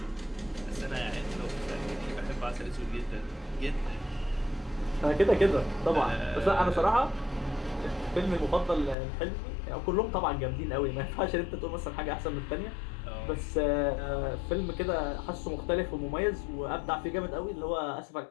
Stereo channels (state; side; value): drops out; right; at 9.0 s